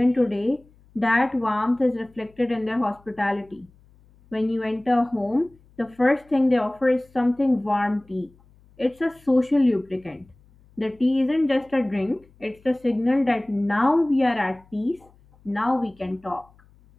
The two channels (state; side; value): noise; left; hum, 29 dB below the sound